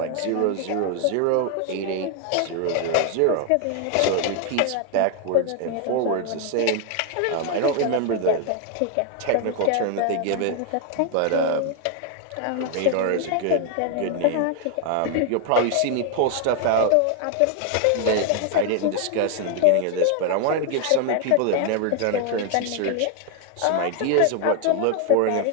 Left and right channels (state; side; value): different; both; correlation 0.00